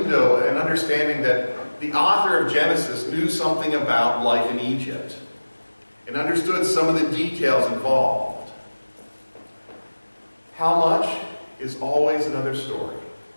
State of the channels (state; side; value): inverted; both; correlation -1.00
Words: an understanding that the author of Genesis knew something about life in Egypt and understood some of the details involved. How much is always another story.